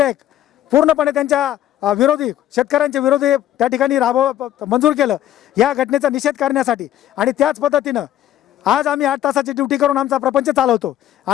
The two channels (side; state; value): right; quieter; 12.1 dB